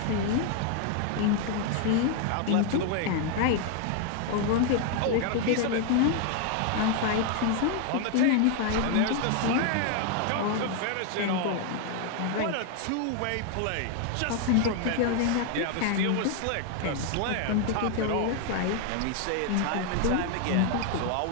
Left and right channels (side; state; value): both; different; correlation 0.00